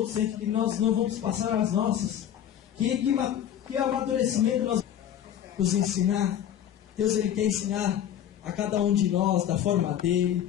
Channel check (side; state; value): right; quieter; 10.3 dB